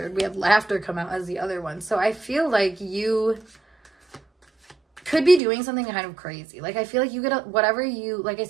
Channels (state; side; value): drops out; left; at 5.4 s